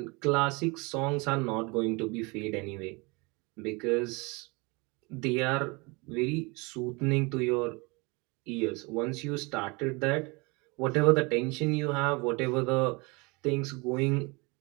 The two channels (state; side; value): quieter; left; 27.7 dB